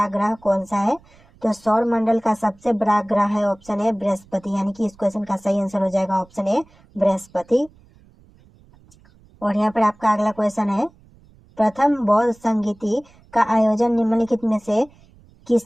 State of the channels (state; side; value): noise; right; rumble, 28 dB below the sound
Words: ग्रह कौन सा है। तो सौर मंडल का सबसे बड़ा ग्रह है ऑप्शन ए बृहस्पति, यानी कि इस क्वेश्चन का सही आंसर हो जाएगा ऑप्शन ए बृहस्पति। और यहाँ पर आपका अगला क्वेश्चन है, प्रथम बौद्ध संगीति का आयोजन निम्नलिखित में से